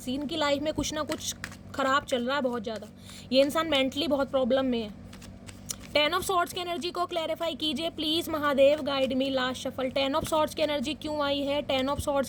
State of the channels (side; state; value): both; identical; correlation 1.00